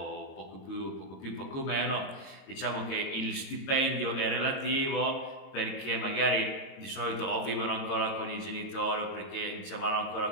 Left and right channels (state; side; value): late; right; 22 ms